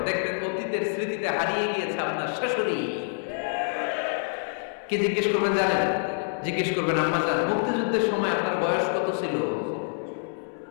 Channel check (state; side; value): silent; right; 60 dB below the other